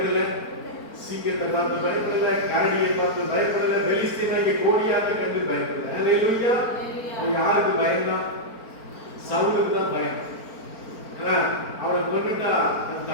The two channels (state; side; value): late; right; 4.4 ms